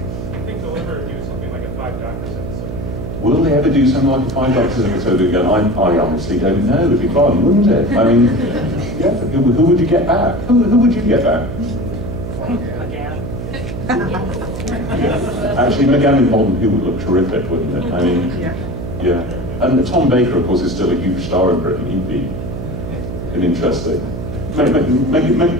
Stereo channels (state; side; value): noise; right; hum, 7 dB below the sound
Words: I think they'll ever do something like a 5 Doctors episode. Will they ever do something like a 5 Doctors episode again? I honestly don't know. It'd be fun, wouldn't it? I mean, yeah. Who would you get back? Who would you get back? McGann. Actually, McGann and Bond, who would look terrific, wouldn't it? I mean, yeah. And Tom Baker, of course, is still a huge star in Britain. He'd be an interesting.